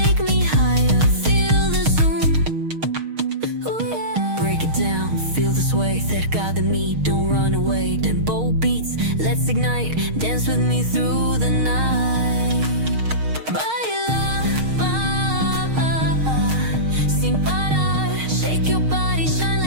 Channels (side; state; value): left; late; 6.4 ms